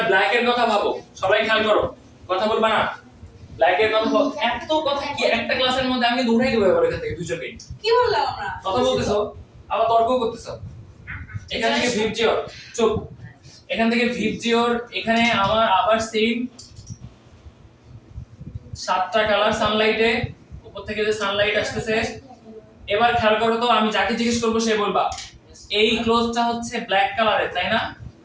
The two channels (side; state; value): both; identical; correlation 1.00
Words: ব্ল্যাক এর কথা ভাবো সবাই খেয়াল করো কথা বলবা না ব্ল্যাক এর কথা এত কথা কি একটা ক্লাসের মধ্যে আমি দৌড়াই দেব এবার এখান থেকে দুজনকে কি বললাম আমরা কথা বলতেছো আবার তর্ক করতেছো এখান থেকে ভিবজিওর চুপ এখান থেকে ভিবজিওর এখানে আমার আবার সেম 7টা কালার সানলাইটে উপর থেকে যে সানলাইট আসতেছে এবার খেয়াল করো তো আমি যাকে জিজ্ঞেস করব সে বলবা এই ক্লোজটা হচ্ছে ব্ল্যাক কালারের তাই না